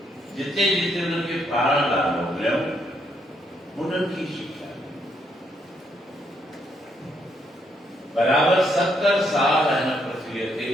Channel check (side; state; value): both; normal; correlation 0.74